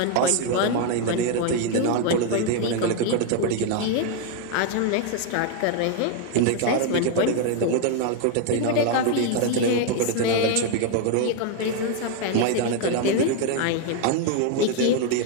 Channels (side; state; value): both; different; correlation 0.01